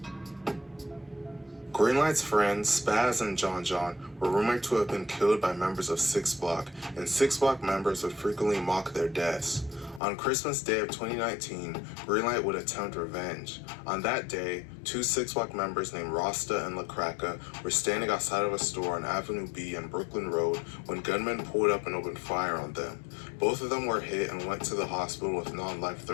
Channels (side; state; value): right; drops out; at 10.0 s